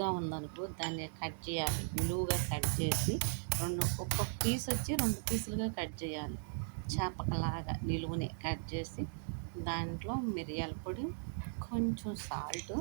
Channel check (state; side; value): silent; left; digital silence